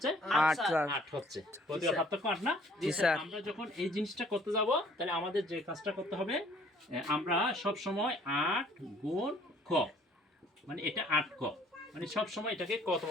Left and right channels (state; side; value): normal; both; correlation 0.57